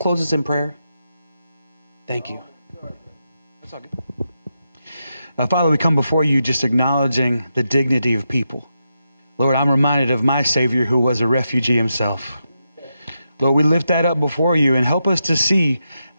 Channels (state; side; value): inverted; both; correlation -0.86